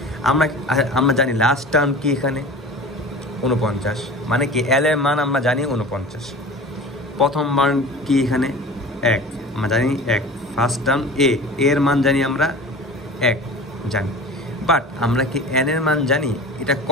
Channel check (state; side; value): normal; both; correlation 0.37